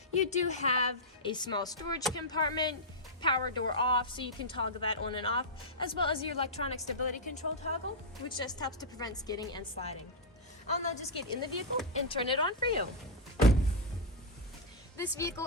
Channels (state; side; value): normal; both; correlation -0.08